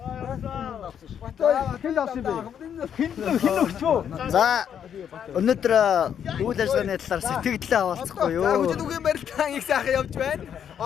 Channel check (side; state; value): right; quieter; 8.6 dB